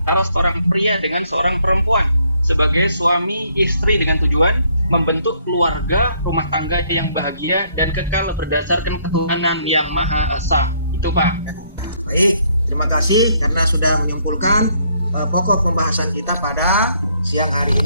seorang pria dengan seorang perempuan sebagai suami istri dengan tujuan membentuk keluarga rumah tangga yang bahagia dan kekal berdasarkan ketuhanan yang Maha Esa. Itu Pak. Baik, terima kasih karena sudah menyimpulkan pokok pembahasan kita pada siang hari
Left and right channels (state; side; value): inverted; both; correlation -0.68